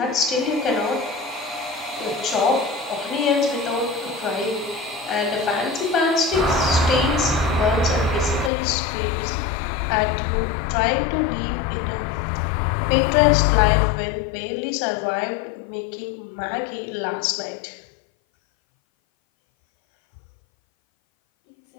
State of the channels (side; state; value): right; drops out; at 8.5 s